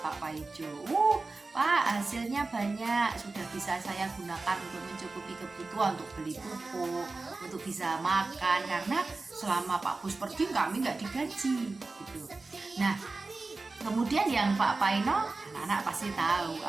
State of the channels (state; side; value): quieter; left; 3.6 dB